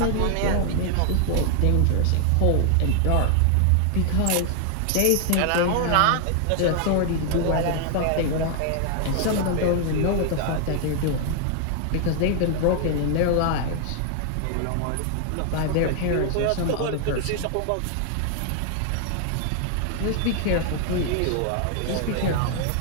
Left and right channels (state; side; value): different; both; correlation 0.00